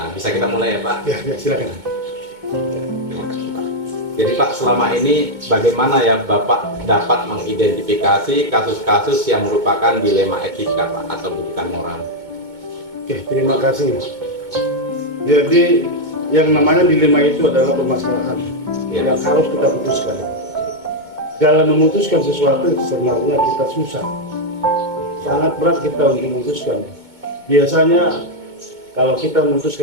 Bisa kita mulai ya Pak? Ya, silakan. Terima kasih Pak. Jadi Pak, selama ini bagaimana ya Bapak dapat mengidentifikasi kasus-kasus yang merupakan dilema etika Pak atau bukan moral? Oke, terima kasih. Jadi yang namanya dilema itu adalah permasalahan yang harus kita putuskan. Dalam memutuskan sesuatu sebenarnya kita susah, sangat berat kita untuk memutuskan. Biasanya kalau kita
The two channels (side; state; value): left; late; 2.2 ms